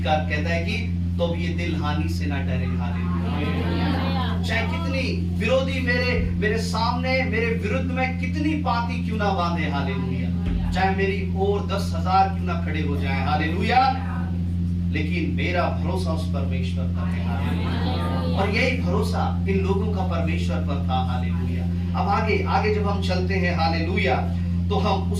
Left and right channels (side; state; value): both; identical; correlation 1.00